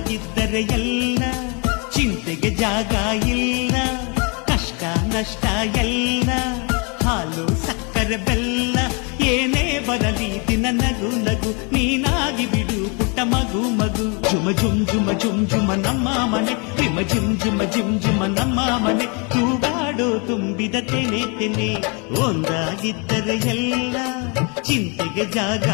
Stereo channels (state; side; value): quieter; right; 33.1 dB